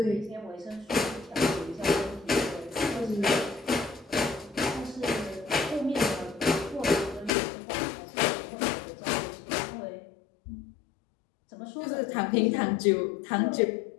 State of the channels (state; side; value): drops out; right; at 7.3 s